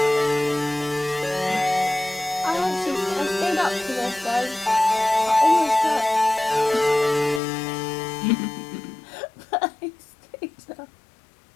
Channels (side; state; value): right; drops out; at 7.4 s